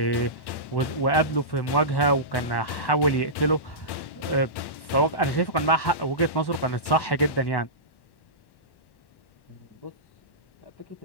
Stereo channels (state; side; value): late; right; 1.1 ms